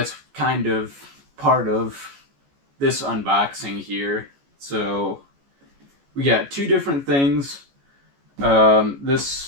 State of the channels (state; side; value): late; left; 14 ms